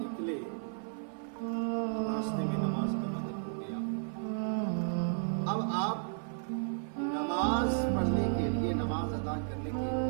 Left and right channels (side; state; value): left; silent; 55 dB below the other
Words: راستے میں نماز کا وقت ہو گیا۔ اب آپ نماز پڑھنے کے لیے، نماز ادا کرنے کے